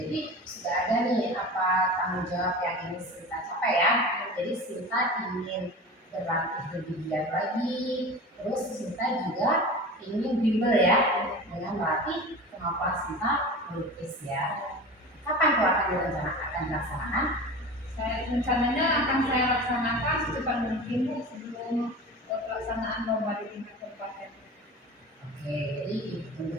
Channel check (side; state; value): both; normal; correlation 0.33